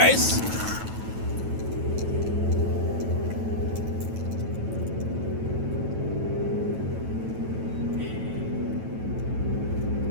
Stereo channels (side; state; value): left; late; 9.2 ms